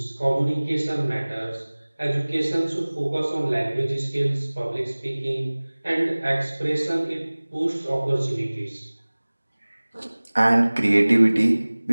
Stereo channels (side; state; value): both; inverted; correlation -1.00